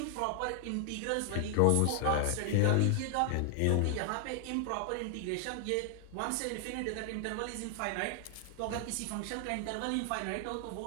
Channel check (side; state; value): both; different; correlation 0.00